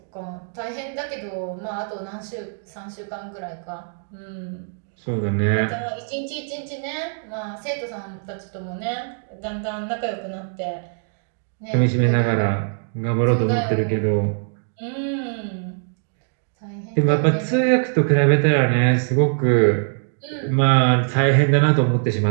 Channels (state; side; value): silent; left; 64 dB below the other